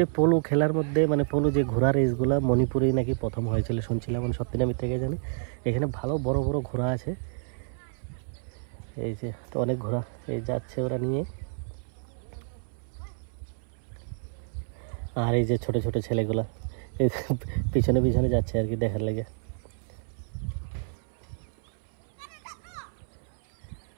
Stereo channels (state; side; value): silent; left; 59 dB below the other